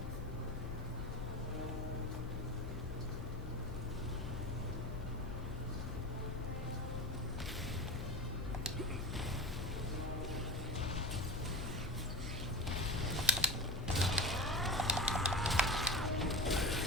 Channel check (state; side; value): normal; both; correlation 0.26